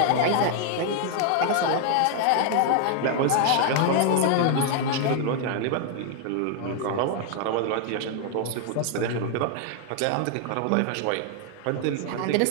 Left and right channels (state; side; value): different; both; correlation 0.00